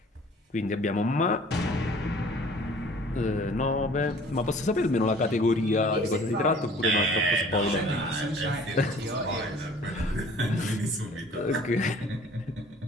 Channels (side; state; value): both; normal; correlation 0.51